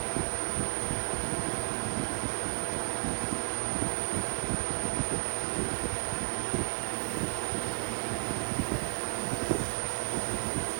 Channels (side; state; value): left; quieter; 35.6 dB